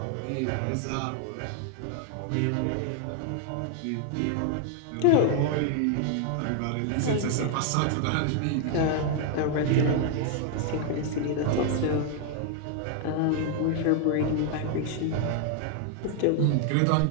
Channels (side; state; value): both; different; correlation 0.00